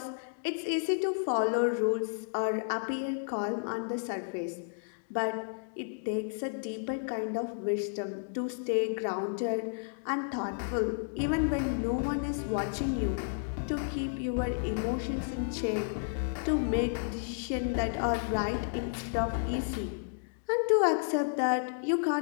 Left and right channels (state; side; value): silent; right; digital silence